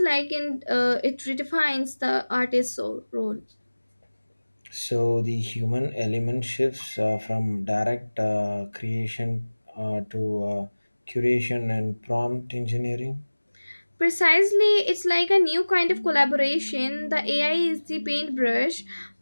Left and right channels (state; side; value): inverted; both; correlation -1.00